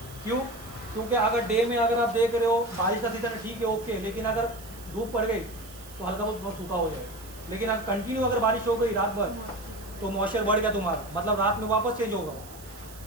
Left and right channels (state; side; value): noise; right; hiss, 19 dB below the sound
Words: क्यों? क्योंकि अगर डे में अगर आप देख रहे हो बारिश का सीजन है, ठीक है ओके, लेकिन अगर धूप पड़ गई तो हल्का बहुत सूखा हो जाएगा। लेकिन अगर कंटिन्यू अगर बारिश हो गई रात भर, तो मॉइस्चर बढ़ गया तुम्हारा, मतलब रात में वापस चेंज होगा।